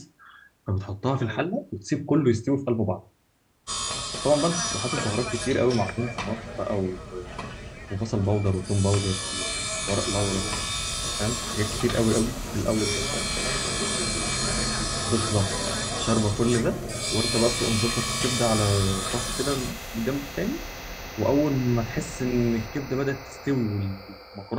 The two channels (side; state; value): both; identical; correlation 1.00